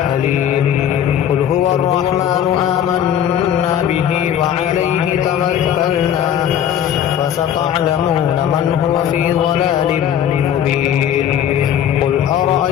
قل هو الرحمن آمنا به وعليه توكلنا فستعلمون من هو في ضلال مبين. قل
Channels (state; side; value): quieter; right; 9.8 dB